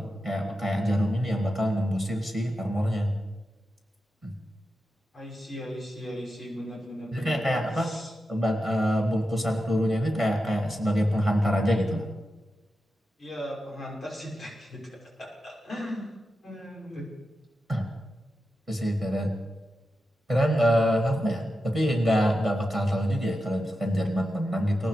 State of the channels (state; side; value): normal; both; correlation 0.90